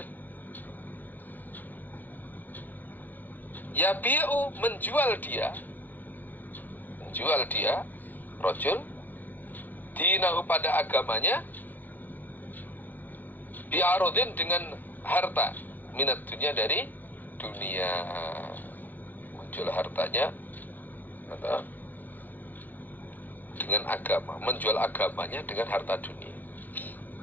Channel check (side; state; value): right; late; 0.086 ms